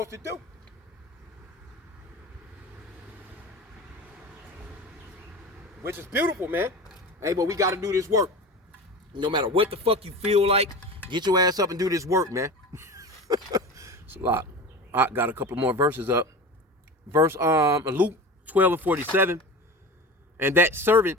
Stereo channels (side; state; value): both; normal; correlation 0.31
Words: to do. Which is beautiful, man. Hey, but we got to do this work. No matter what the fuck you feel like, get your ass up and do this work, man. It's a lot. I got a couple more verses up. Verse Luke 12 and 47. And that servant